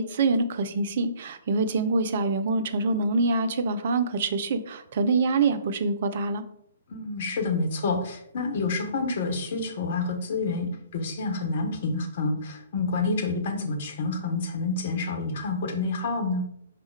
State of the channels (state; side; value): inverted; both; correlation -0.52